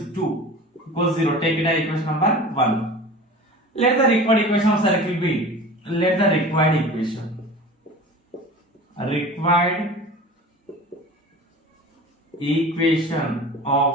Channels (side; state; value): both; normal; correlation 0.38